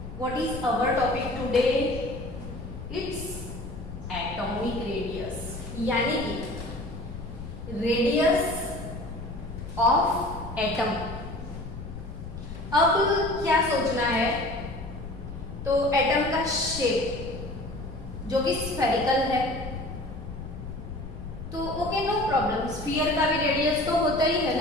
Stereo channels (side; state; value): left; noise; rumble, 10 dB below the sound